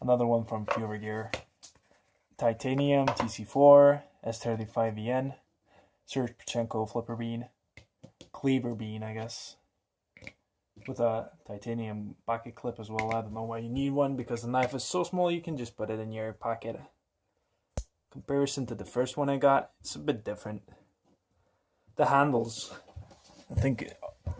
another one from Fura Gear, titanium, TC4, S35EN, Serge Panchenko flipper bean, Cleaver bean I guess, with a titanium pocket clip as well. I don't know why you need one because the knife is so small you can just put it in your pocket. Comparison to the first one I got, it's a bit different. The handles, I think.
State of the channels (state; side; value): identical; both; correlation 1.00